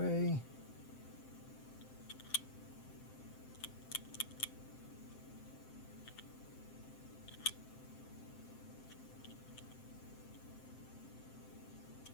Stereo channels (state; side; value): late; right; 7.7 ms